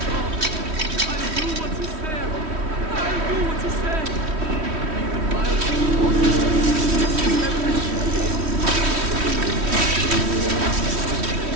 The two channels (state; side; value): late; left; 3.1 ms